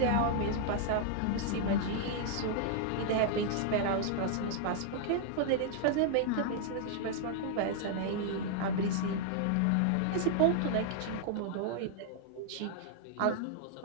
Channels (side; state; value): both; different; correlation -0.01